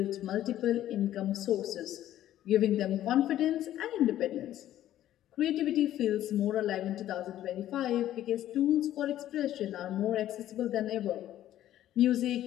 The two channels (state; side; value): quieter; right; 12.7 dB